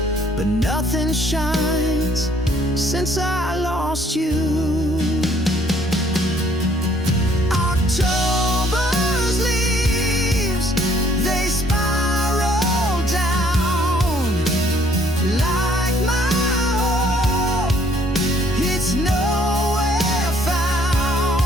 but nothing shines since I lost you. October's leaves, they spiral down like my hope. It's nowhere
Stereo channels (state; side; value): normal; both; correlation 0.63